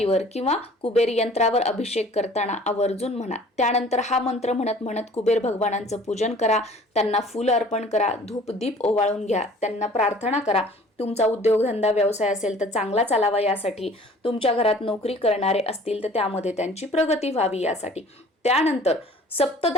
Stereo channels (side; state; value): both; normal; correlation 0.50